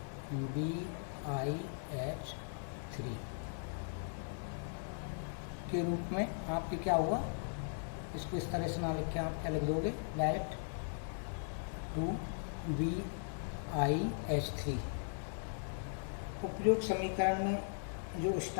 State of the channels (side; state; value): right; silent; digital silence